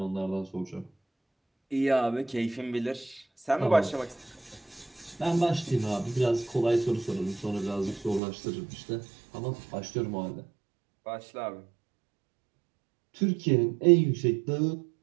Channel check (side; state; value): left; drops out; at 8.2 s